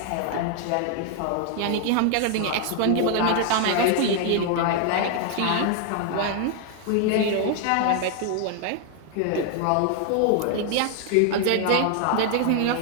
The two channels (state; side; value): different; both; correlation 0.00